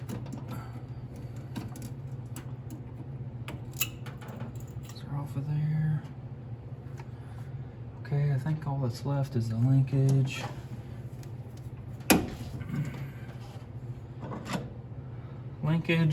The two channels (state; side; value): identical; both; correlation 1.00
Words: They're off of there. Okay, I think all that's left is the linkage.